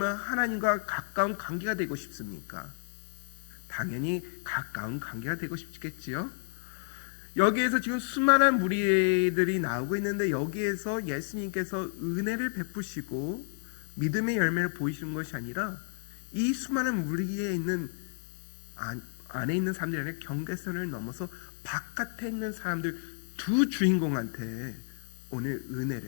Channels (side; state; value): right; silent; digital silence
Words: 하나님과 가까운 관계가 되고 싶습니까? 당연히 가까운 관계가 되고 싶겠지요. 여기에서 지금 수많은 무리들이 나오고 있는데 여기에서 예수님께서 은혜를 베푸시고 믿음의 열매를 보이시는 것이 아니라 이 수많은 무리에 있는 안에 있는 사람들이 아니라 경계선을 넘어서 바깥에 있는 사람들 두 주인공한테 오늘